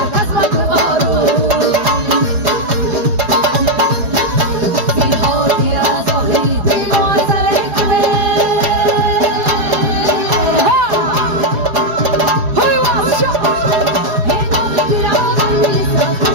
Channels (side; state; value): left; late; 4.9 ms